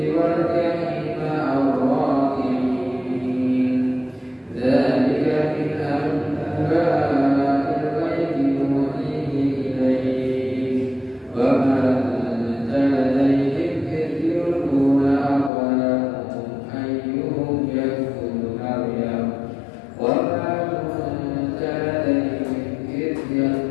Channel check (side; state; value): right; drops out; at 15.5 s